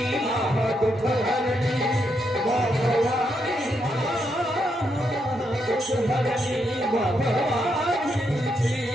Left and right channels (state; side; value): normal; both; correlation 0.80